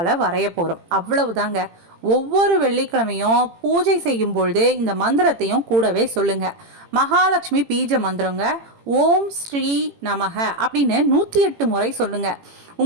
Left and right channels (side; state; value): left; late; 18 ms